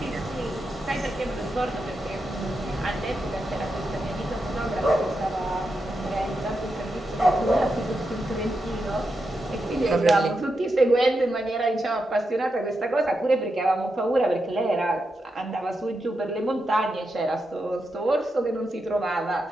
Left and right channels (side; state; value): both; normal; correlation 0.86